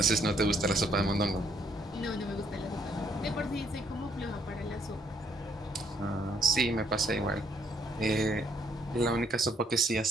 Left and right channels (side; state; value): both; normal; correlation 0.70